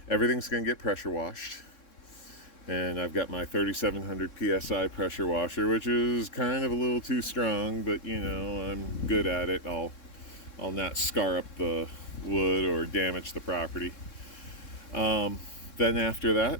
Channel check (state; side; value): late; right; 3.6 ms